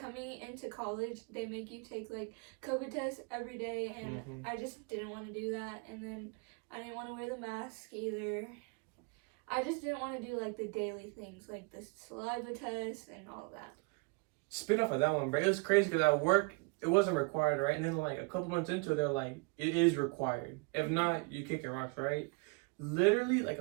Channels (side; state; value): left; quieter; 31.1 dB